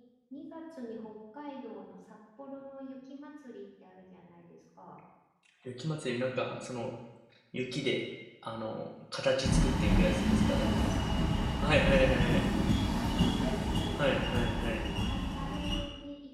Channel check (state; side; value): identical; both; correlation 1.00